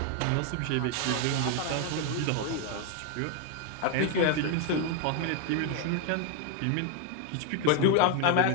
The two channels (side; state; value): both; different; correlation 0.01